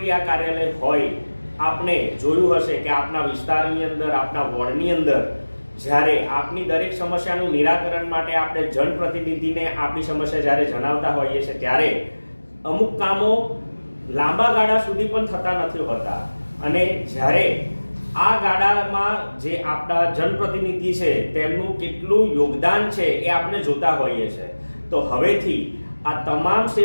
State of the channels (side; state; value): both; inverted; correlation -1.00